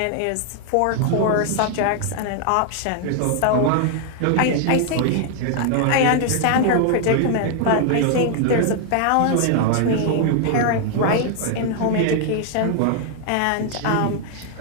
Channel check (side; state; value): both; different; correlation 0.00